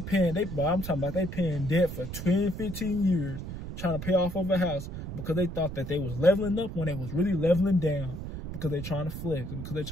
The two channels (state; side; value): noise; right; rumble, 8 dB below the sound